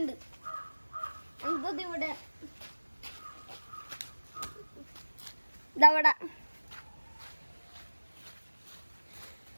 എന്തത് ഇവിടെ ഇതവിടെ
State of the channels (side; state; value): both; inverted; correlation -1.00